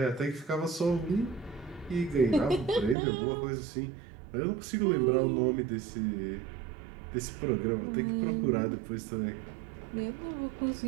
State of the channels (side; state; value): left; drops out; at 3.0 s